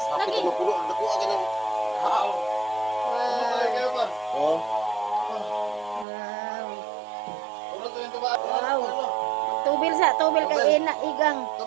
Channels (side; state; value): left; drops out; at 6.1 s